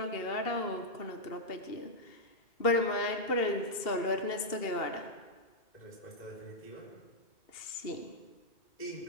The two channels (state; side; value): late; right; 2.7 ms